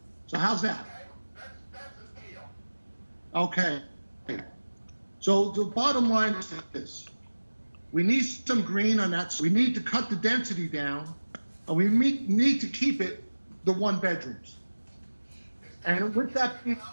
So how's that? That's a deal. Okay. So the bottom line is this. We need some green on that. We need to cut the density down, and we need to keep it the one bedrooms. And with that being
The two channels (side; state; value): both; inverted; correlation -1.00